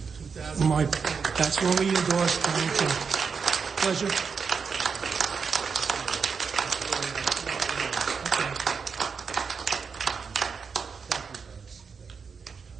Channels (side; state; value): left; quieter; 5.7 dB